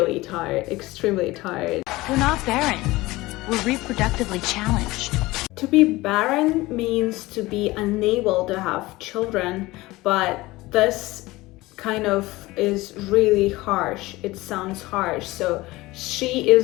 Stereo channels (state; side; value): quieter; right; 19.7 dB